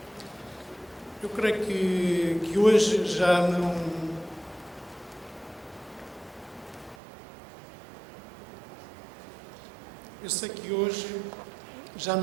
Eu creio que hoje já não... Eu sei que hoje já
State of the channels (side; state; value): left; drops out; at 7.0 s